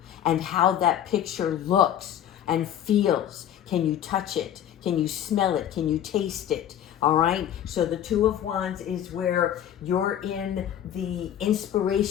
and how that picture looks and feels. Can you touch it? Can you smell it? Can you taste it? All right, so the Two of Wands is where you're in the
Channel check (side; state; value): right; quieter; 10.5 dB